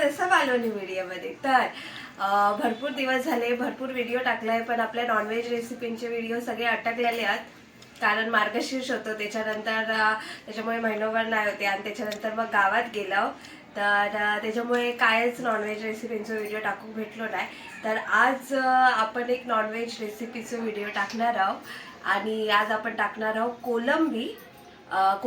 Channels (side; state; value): both; identical; correlation 1.00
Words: असं मालवणी व्हिडिओमध्ये। तर भरपूर दिवस झाले, भरपूर व्हिडिओ टाकलाय, पण आपल्या नॉनव्हेज रेसिपींचे व्हिडिओ सगळे अटकलेले आहेत, कारण मार्गशीर्ष होतं त्याच्यानंतर, त्याच्यामुळे महिनोभर नाही होते आणि त्याच्यानंतर मग गावात गेलो, तर त्याच्यामुळे कायच नॉनव्हेज रेसिपींचा व्हिडिओ टाकू भेटलो नाही। तर आज आपण एक नॉनव्हेज रेसिपीचा व्हिडिओ टाकणार आहोत आणि आज आपण टाकणार आहोत